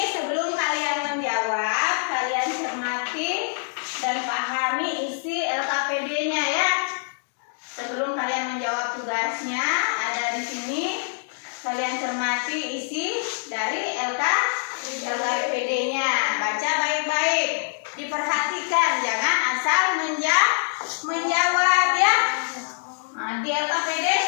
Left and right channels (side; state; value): right; silent; digital silence